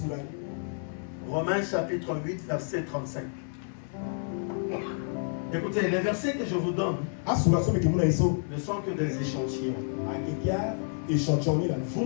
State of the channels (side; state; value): right; silent; 58 dB below the other